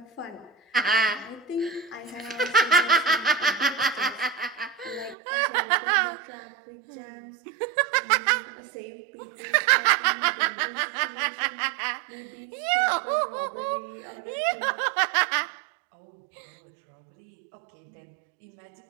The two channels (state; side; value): drops out; left; at 5.2 s